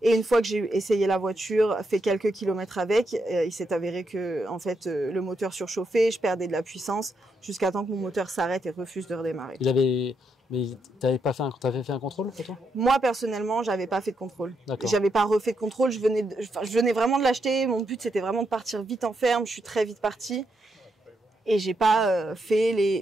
Et une fois que j'ai essayé la voiture, fait quelques kilomètres avec, il s'est avéré que en fait le moteur surchauffait, je perdais de la puissance jusqu'à temps que mon moteur s'arrête et refuse de redémarrer. Mais t'avais fait un contrôle pour toi? Moi personnellement, j'avais pas fait de contrôle. D'accord. J'avais pas refait de contrôle. Je venais vraiment de l'acheter. Mon but c'était vraiment de partir vite en ferme. Je suis très vite partie et j'ai pas fait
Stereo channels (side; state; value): both; normal; correlation 0.81